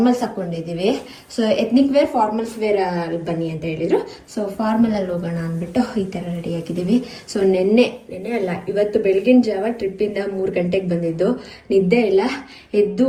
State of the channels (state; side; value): identical; both; correlation 1.00